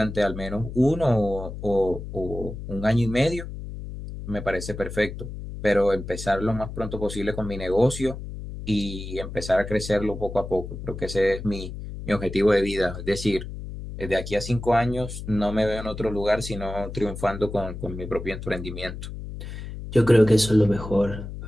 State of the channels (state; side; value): noise; left; hum, 9 dB below the sound